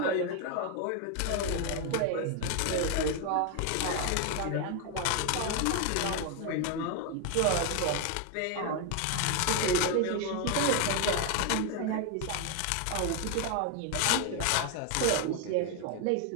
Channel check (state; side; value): different; both; correlation 0.01